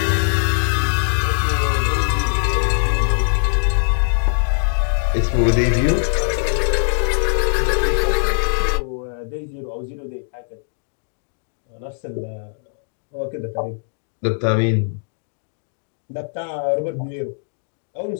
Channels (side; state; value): right; silent; digital silence